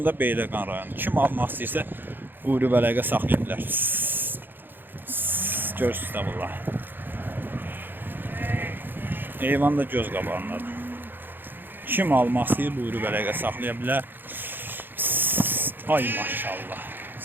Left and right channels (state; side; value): late; left; 0.095 ms